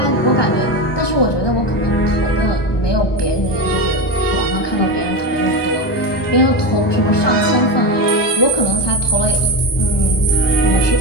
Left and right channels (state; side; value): late; right; 1.2 ms